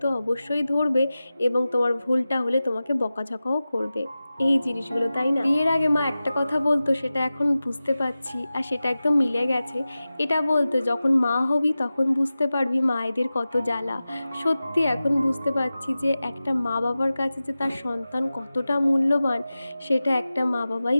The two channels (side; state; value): both; inverted; correlation -0.95